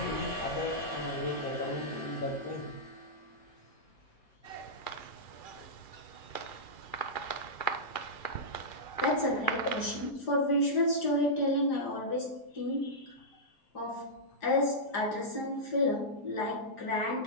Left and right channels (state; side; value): late; right; 4.9 ms